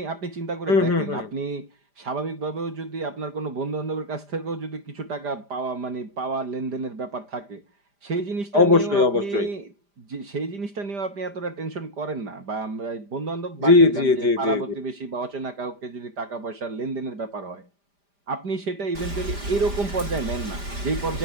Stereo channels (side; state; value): left; late; 5.0 ms